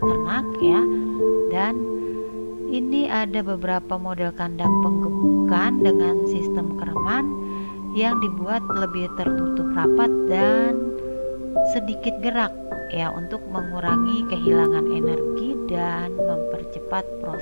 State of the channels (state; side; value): inverted; both; correlation -1.00